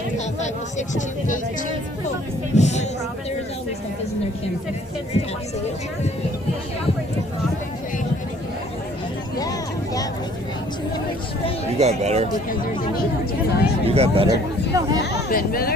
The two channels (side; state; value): both; normal; correlation 0.57